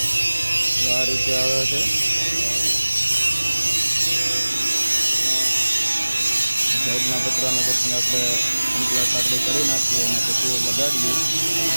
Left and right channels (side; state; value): both; inverted; correlation -1.00